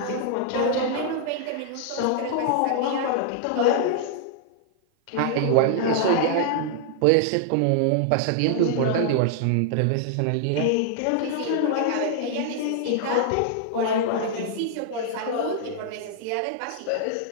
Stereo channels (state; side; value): different; both; correlation -0.01